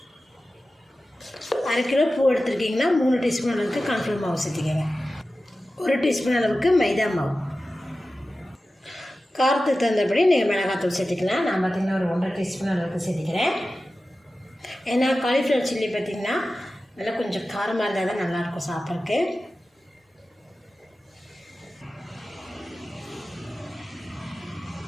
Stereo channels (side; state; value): both; normal; correlation 0.94